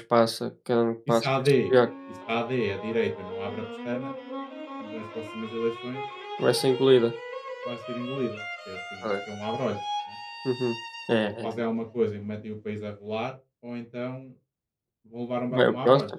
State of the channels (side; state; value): both; identical; correlation 1.00